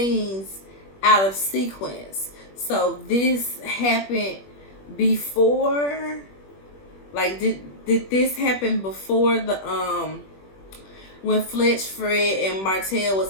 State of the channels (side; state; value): right; late; 21 ms